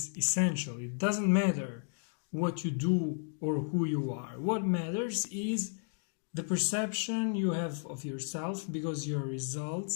essential. It doesn't matter what you do or who you are. What matters is the perception you have of yourself, because your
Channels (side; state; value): right; silent; digital silence